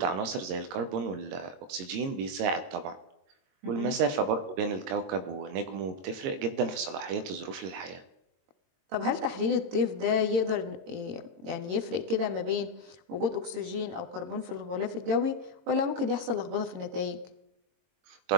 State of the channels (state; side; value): late; left; 22 ms